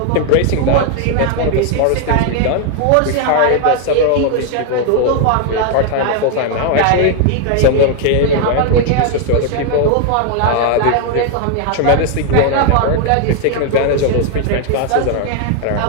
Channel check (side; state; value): both; different; correlation 0.00